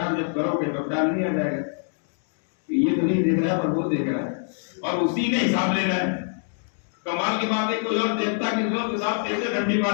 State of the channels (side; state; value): right; silent; 61 dB below the other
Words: جب کرو گے تو ڈال نہیں آ جائے گا، یہ تو نہیں دیکھ رہا ہے پر وہ دیکھ رہا ہے، اور اسی نے حساب لینا ہے۔ کمال کی بات ہے کوئی اور دیکھتا کہ لوگ حساب کیسے ڈنڈی